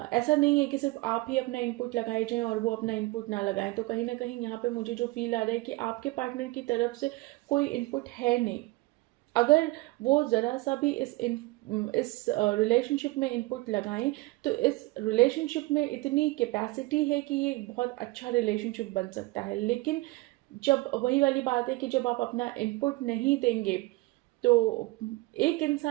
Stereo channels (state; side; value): quieter; left; 21.2 dB